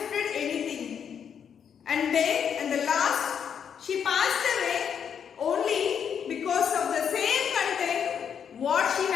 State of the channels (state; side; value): quieter; right; 7.8 dB